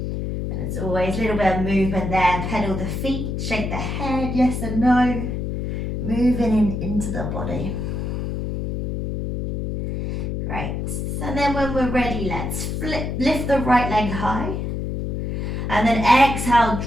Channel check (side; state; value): left; noise; hum, 3 dB below the sound